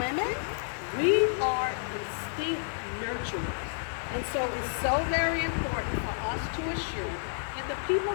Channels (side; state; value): right; silent; digital silence